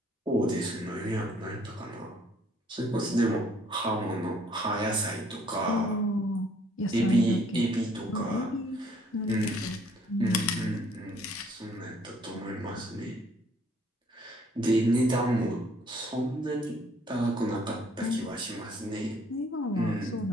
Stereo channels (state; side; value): normal; both; correlation 0.62